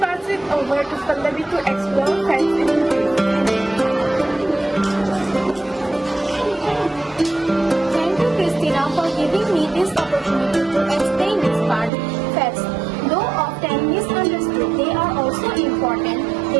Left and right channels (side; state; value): left; drops out; at 11.9 s